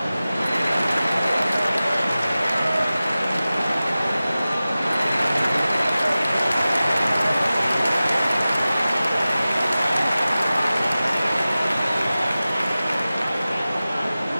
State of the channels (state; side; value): inverted; both; correlation -0.96